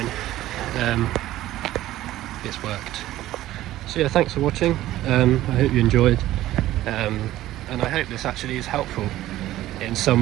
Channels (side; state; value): left; quieter; 14.8 dB